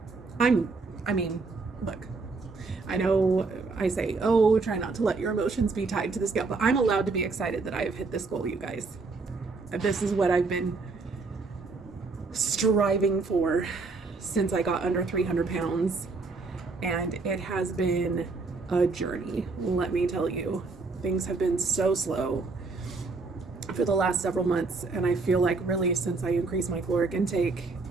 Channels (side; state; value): left; quieter; 4.0 dB